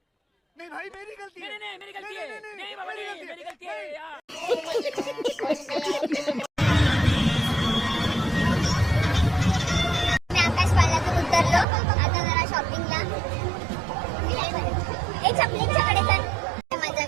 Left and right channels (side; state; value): left; drops out; at 11.7 s